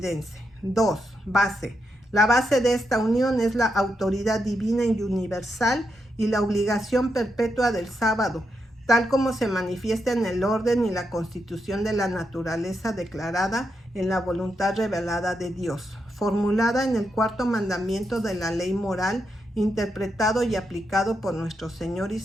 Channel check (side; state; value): both; normal; correlation 0.83